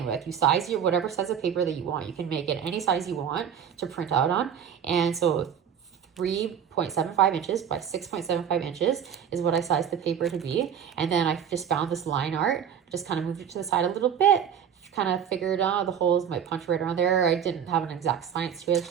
with. You size your whatever size of paper that you want. You can make it any size you want to print out on. And so 3.75 inches by 6.75 inches is what I sized the paper to be. And then I just found this line art, just kind of moved it to the side a little bit, kind of figured out the holes might punch right around there. I didn't have an exact science to it,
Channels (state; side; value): quieter; left; 8.4 dB